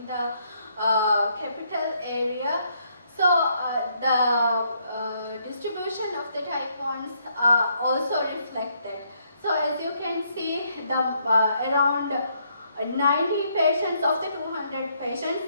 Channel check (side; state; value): both; inverted; correlation -0.72